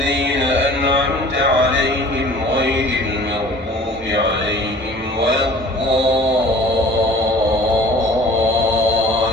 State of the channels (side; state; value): both; normal; correlation 0.47